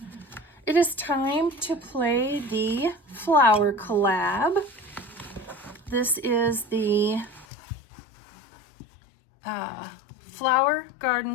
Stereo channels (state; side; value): drops out; right; at 7.5 s